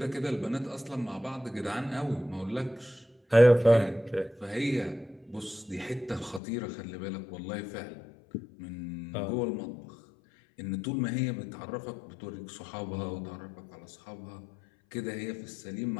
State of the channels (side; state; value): right; drops out; at 6.4 s